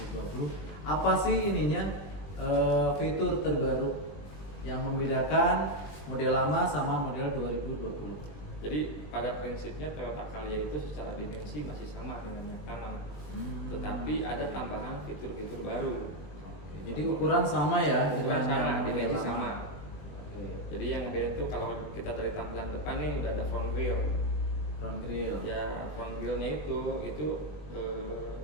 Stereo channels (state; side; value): late; right; 20 ms